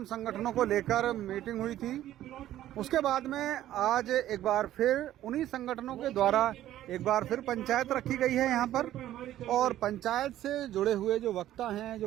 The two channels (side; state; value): left; quieter; 13.1 dB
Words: संगठनों को लेकर मीटिंग हुई थी। उसके बाद में आज एक बार फिर उन्हीं संगठनों के द्वारा एक बार फिर पंचायत रखी गई है यहाँ पर, और पंचायत से जुड़े हुए जो वक्ता हैं, जो